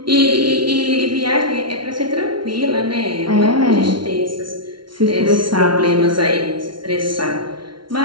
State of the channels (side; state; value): left; late; 0.73 ms